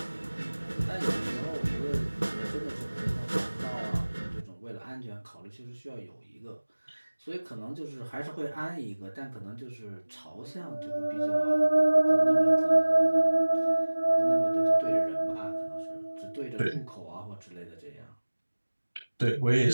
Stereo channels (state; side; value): inverted; both; correlation -1.00